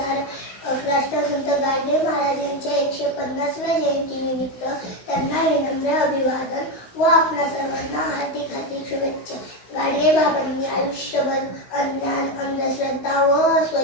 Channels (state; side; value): late; right; 16 ms